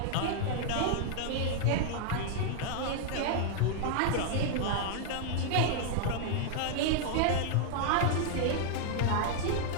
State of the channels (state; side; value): different; both; correlation -0.01